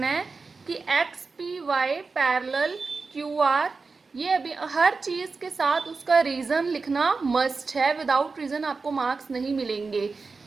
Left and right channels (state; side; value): quieter; left; 4.3 dB